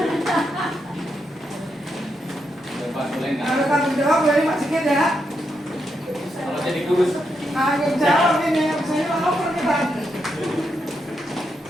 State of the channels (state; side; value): normal; both; correlation 0.82